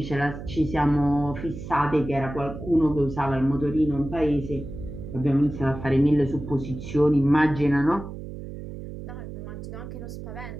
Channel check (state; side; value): noise; right; hum, 10 dB below the sound